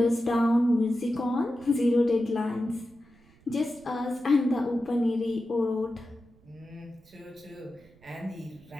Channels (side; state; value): right; noise; rumble, 29 dB below the sound